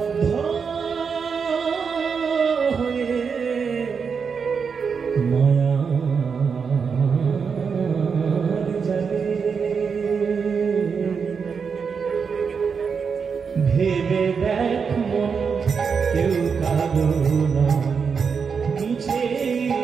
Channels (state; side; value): quieter; left; 5.9 dB